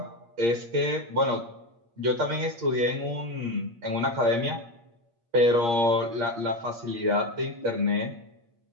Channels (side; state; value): left; late; 8.6 ms